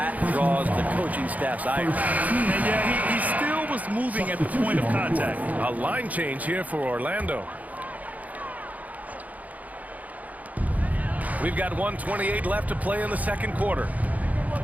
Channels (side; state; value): left; late; 0.076 ms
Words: draws the coaching staff's ire. And yeah, he still was moving at the point of contact. A line change here for Orlando. We've got 1:28 left to play in the second quarter.